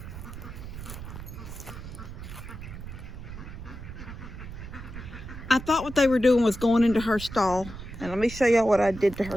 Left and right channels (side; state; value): right; noise; rumble, 11 dB below the sound